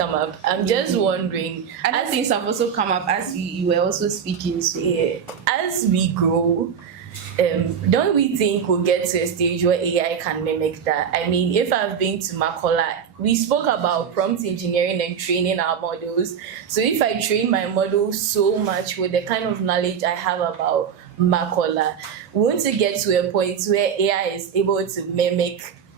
up. I'm just wondering. Other things have also come up as you were also speaking. So yeah, as we grow, don't we think we'll get to a stage where AI can mimic that? I mean, if I've been to Makola, we spoke about prompt engineering and training our models. So if I train my model so much with the kind of knowledge I have about Makola, won't it get to a point where AI is able to mimic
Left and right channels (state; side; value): quieter; left; 7.5 dB